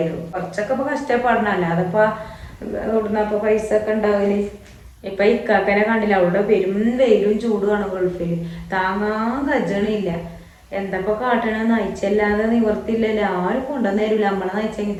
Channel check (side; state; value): both; identical; correlation 1.00